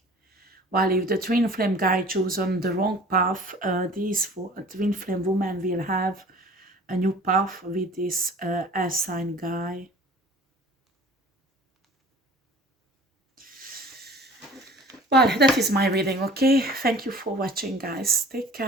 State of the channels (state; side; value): normal; both; correlation 0.46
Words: While if the twin flame guy chosen the wrong path, these twin flame women will have a new path with this air sign guy. Well, that is my reading, okay? Thank you for watching, guys. Take